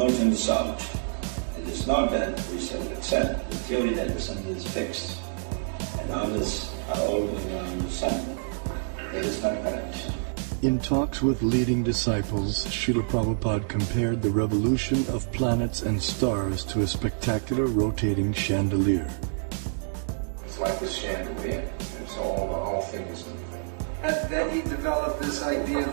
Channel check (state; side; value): silent; left; digital silence